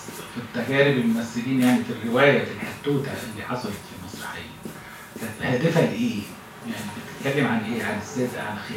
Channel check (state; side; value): identical; both; correlation 1.00